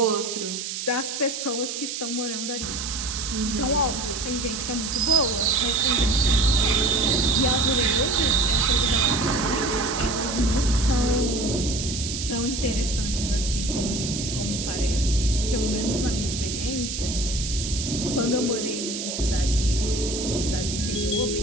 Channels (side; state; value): right; noise; hiss, 5 dB below the sound